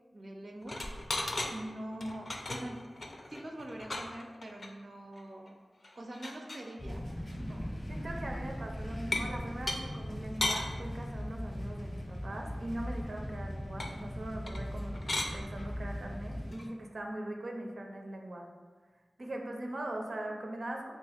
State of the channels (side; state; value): both; normal; correlation 0.96